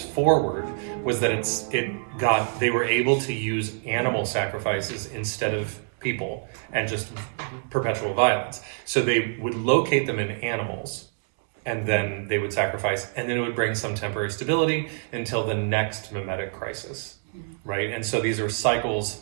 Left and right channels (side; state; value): left; silent; 61 dB below the other